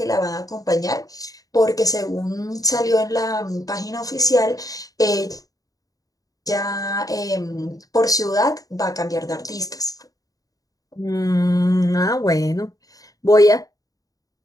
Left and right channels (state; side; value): late; right; 0.17 ms